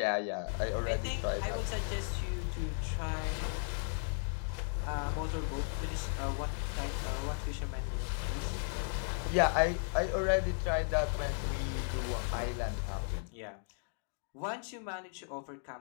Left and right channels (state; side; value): silent; right; 54 dB below the other